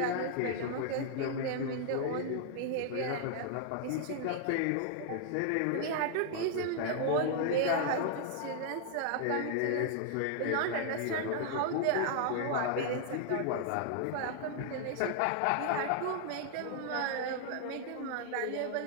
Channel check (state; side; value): different; both; correlation -0.01